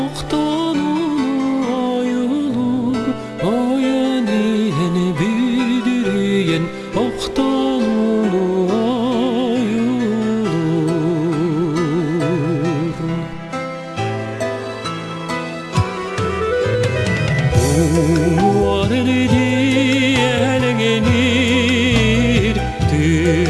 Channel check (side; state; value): both; identical; correlation 1.00